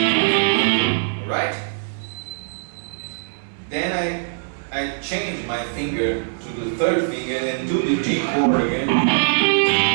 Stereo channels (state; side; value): silent; left; digital silence